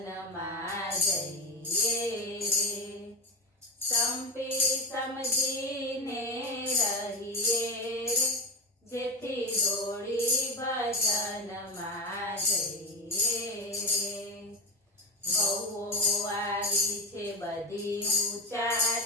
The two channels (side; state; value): both; normal; correlation 0.17